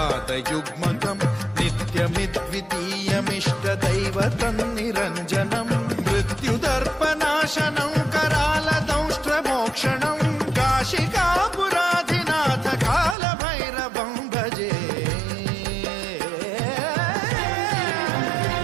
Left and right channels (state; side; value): drops out; left; at 13.2 s